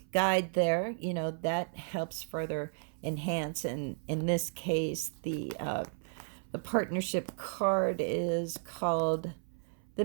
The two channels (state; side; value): silent; left; 55 dB below the other